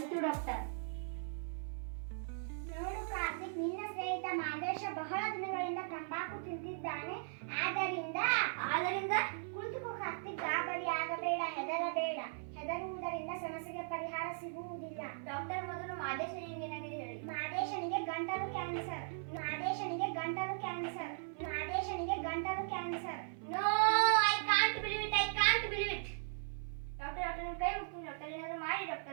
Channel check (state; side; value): silent; left; 52 dB below the other